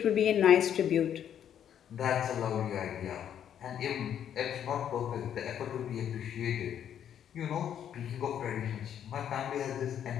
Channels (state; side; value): quieter; right; 9.5 dB